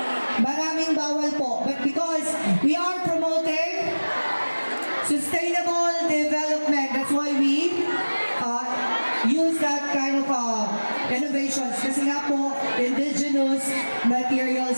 Maraming bawal po. But because we are promoting sustainable development, that's why we use that kind of innovations. Kasi nga po, indigenous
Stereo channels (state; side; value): inverted; both; correlation -1.00